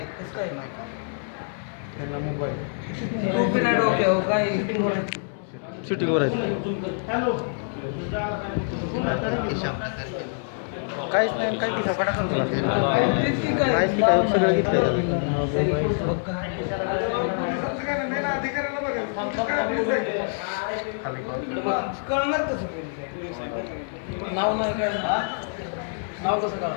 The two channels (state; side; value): silent; right; 61 dB below the other